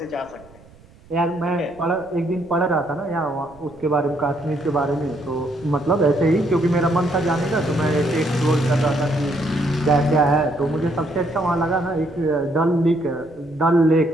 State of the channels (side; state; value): right; noise; rumble, 25 dB below the sound